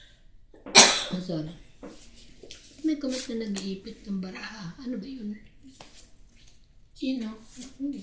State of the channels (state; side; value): identical; both; correlation 1.00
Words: Sorry. May comment na nag-iipit ng baraha. Ano ba yun? Sino? Hindi,